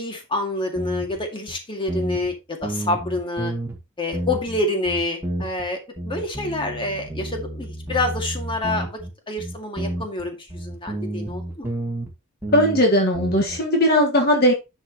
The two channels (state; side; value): normal; both; correlation 0.12